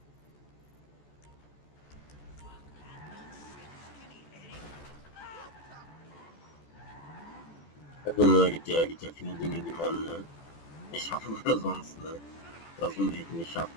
Also, ne, gibt ja viele Dinge, die man nicht schaffen oder sonst, ne? Was man nicht schafft,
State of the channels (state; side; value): late; right; 14 ms